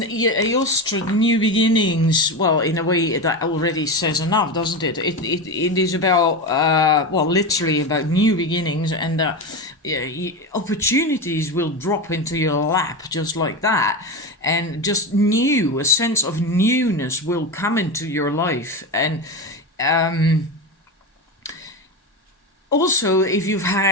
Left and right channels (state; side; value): normal; both; correlation 0.19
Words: Eostre, new beginnings. Well, in a way that already says enough, doesn't it? It is about literally about new beginnings, and opportunities will drop into your lap just like that, and just a sense of newness will come into your life. And also, if you've